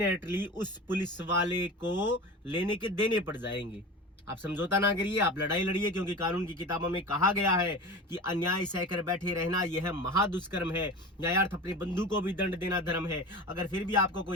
उस पुलिस वाले को लेने के देने पड़ जाएंगे। आप समझौता ना करिए, आप लड़ाई लड़िए, क्योंकि कानून की किताबों में कहा गया है कि अन्याय सहकर बैठे रहना यह महादुष्कर्म है, न्यायार्थ अपने बंधु को भी दंड देना धर्म है। अगर फिर भी आपको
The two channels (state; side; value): normal; both; correlation 0.32